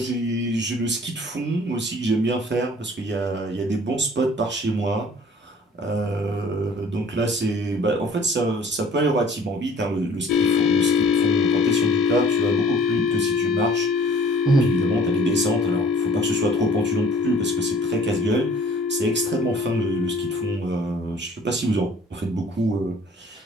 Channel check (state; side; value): normal; both; correlation 0.52